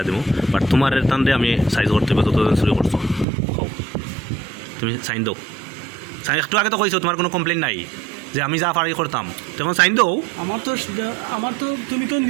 দিব বাট তোমার টানতে আমি সাইজ করতে হবে যতদিন চুরি করছো তুমি সাইন দাও সাইন একটু আগে তো কইছো তোমার কোনো কমপ্লেন নাই যে আমি যা পারি করতাম তখন সাইন দাও আমার তো তুমি তো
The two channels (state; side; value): drops out; left; at 3.2 s